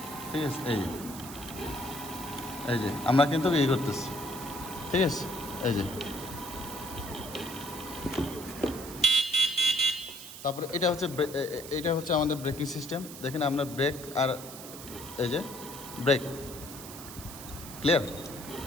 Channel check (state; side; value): noise; right; hiss, 13 dB below the sound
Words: ঠিক আছে। এই যে আমরা কিন্তু এই করতেছি, ঠিক আছে। তারপরে এটা হচ্ছে আমাদের ব্রেকিং সিস্টেম। দেখেন আমরা ব্রেক আর এই যে ব্রেক ক্লিয়ার,